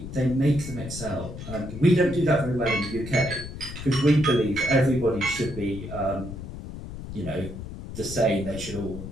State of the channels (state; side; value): noise; left; rumble, 10 dB below the sound